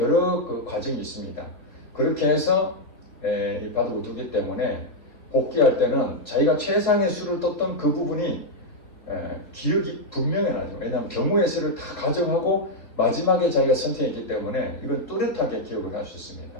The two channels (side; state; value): right; late; 3.7 ms